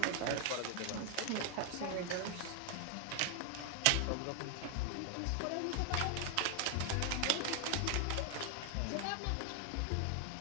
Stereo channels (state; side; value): different; both; correlation 0.00